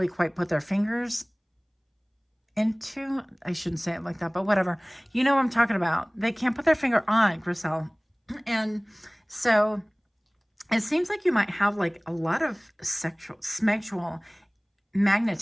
quite put their fingers into. I shouldn't say it like that, but whatever. You know what I'm talking about. They can't put their finger on, Griselle. And so it seems like you might have like a lot of sexual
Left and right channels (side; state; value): both; identical; correlation 1.00